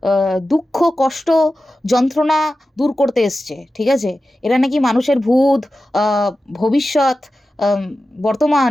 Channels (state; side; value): normal; both; correlation 0.93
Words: দুঃখ, কষ্ট, যন্ত্রণা দূর করতে এসছে। ঠিক আছে? এরা নাকি মানুষের ভূত, আ ভবিষ্যৎ, আম বর্তমান